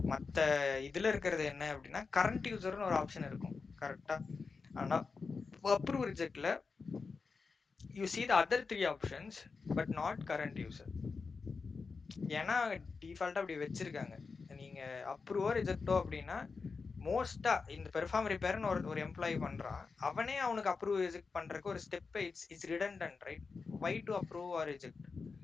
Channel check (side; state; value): right; quieter; 4.7 dB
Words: மற்ற இதுல இருக்கிறது என்ன அப்படின்னா கரண்ட் யூசர்னு ஒரு ஆப்ஷன் இருக்கும் கரெக்டா. ஆனா அப்ரூவ் ரிஜெக்ட்ல you see the other 3 options but not current user. ஏன்னா டிஃபால்ட்டா அப்படி வச்சிருக்காங்க. நீங்க அப்ரூவோ ரிஜெக்டோ அப்படின்னா மோஸ்டா இந்த பெர்ஃபார்ம் ரிப்பேர்னு ஒரு எம்ப்ளாயி பண்றான், அவனே அவனுக்கு அப்ரூவ் ரிஜெக்ட் பண்றதுக்கு ஒரு step it's redundant, right? Why to approve or reject?